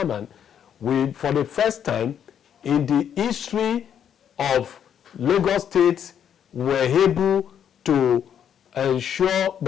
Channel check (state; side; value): quieter; right; 8.9 dB